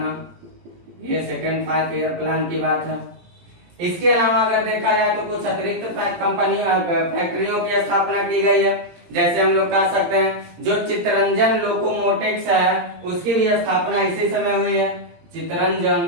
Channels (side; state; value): left; late; 17 ms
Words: ये सेकेंड 5 ईयर प्लान की बात है। इसके अलावा अगर देखा जाए तो कुछ अतिरिक्त फैक्ट्रियों की स्थापना की गई है। जैसे हम लोग कह सकते हैं जो चित्तरंजन लोकोमोटिव्स है उसकी भी स्थापना इसी समय हुई है।